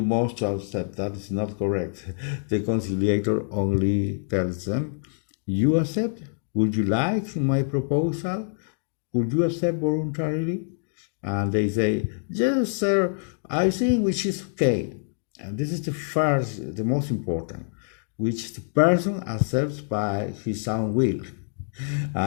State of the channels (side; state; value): right; silent; digital silence